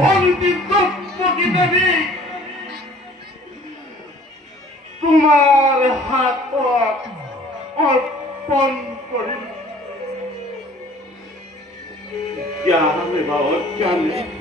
দ্রৌপদী দেবী তোমার হাত অর্পণ করিল। জ্ঞানে বা অজ্ঞানে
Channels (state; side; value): normal; both; correlation 0.52